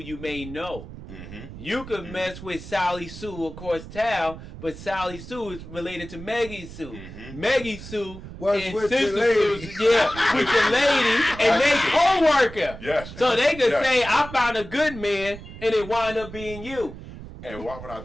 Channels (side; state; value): right; noise; rumble, 13 dB below the sound